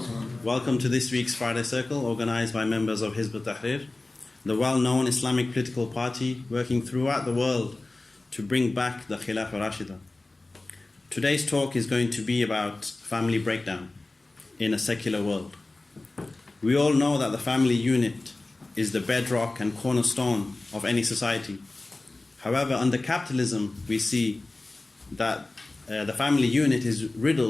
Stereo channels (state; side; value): quieter; right; 3.1 dB